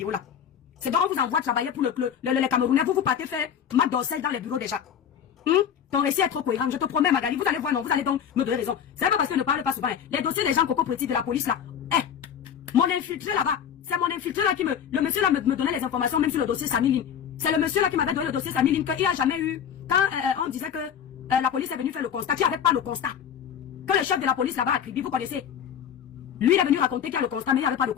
là. C'est donc on vous envoie travailler pour les Camerounais. Vous partez faire Mac Dorsel dans les bureaux déjà. Ton récit est trop cohérent. Je te promets, Magali. Vous allez voir, non. Vous allez donc me donner raison. C'est pas parce que je ne parle pas souvent. Les dossiers des gens Coco Pretty de la police là. Mon infiltré là-bas. C'est mon infiltré là qui le monsieur là me donnait les informations même sur le dossier Samiline. C'est le monsieur là qui m'avait donné le dossier Samiline qu'il n'y a jamais eu. Quand on disait que la police est venue faire le constat, qu'il n'y avait pas le constat. Que le chef de la police là-bas a crié, vous connaissez. Lui, il est venu raconter qu'il y a le constat, mais il n'y avait pas de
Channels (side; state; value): right; quieter; 8.5 dB